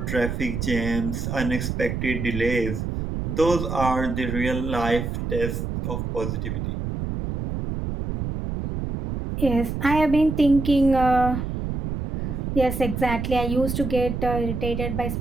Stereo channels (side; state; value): right; noise; rumble, 3 dB below the sound